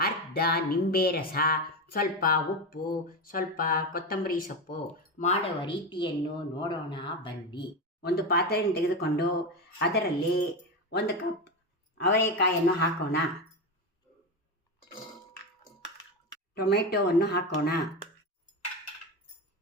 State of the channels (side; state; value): both; normal; correlation 0.16